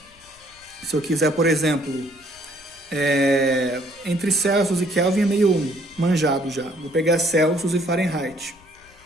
se eu quiser, por exemplo, entre Celsius e Kelvin é meio manjado já. Vou pegar Celsius e Fahrenheit.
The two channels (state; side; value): noise; left; rumble, 29 dB below the sound